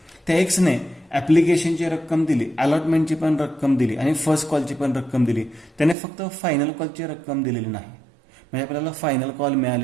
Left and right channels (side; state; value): left; drops out; at 6.0 s